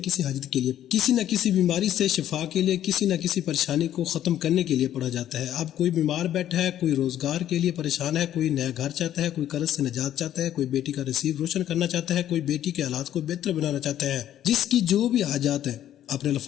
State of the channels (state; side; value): quieter; right; 11.5 dB